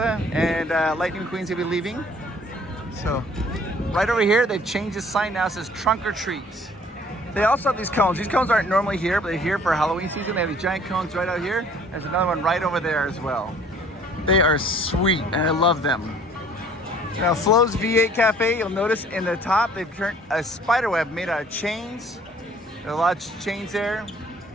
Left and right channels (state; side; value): normal; both; correlation 0.55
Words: and Lightning McQueen's gonna be leaving. So, right over here, they've changed the sign now. It says Trunk or Treat. They also have these cones. These cones aren't normally here, but they're here for Halloween season. They have these giant cones right out here. There's another one right over there as well. They are sweet, and I love them. Now, Flo's V8 Cafe, you'll notice in the top, they've turned a spider web made out of chains. There are a lot of chains there.